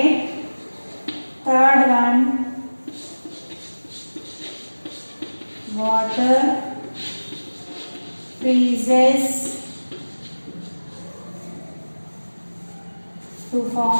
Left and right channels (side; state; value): both; inverted; correlation -1.00